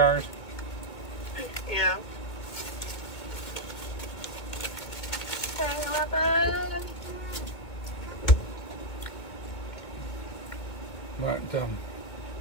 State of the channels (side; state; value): right; late; 2.2 ms